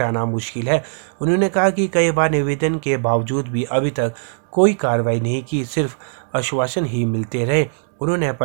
मुश्किल है। उन्होंने कहा कि कई बार निवेदन के बावजूद भी अभी तक कोई कार्रवाई नहीं की, सिर्फ आश्वासन ही मिलते रहे। उन्होंने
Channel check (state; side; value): silent; left; 61 dB below the other